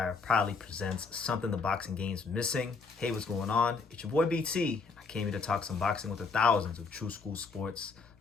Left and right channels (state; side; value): quieter; right; 4.6 dB